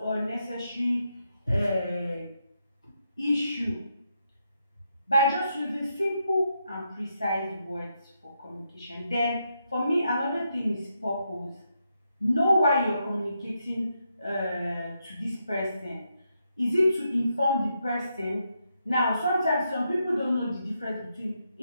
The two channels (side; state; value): both; inverted; correlation -0.81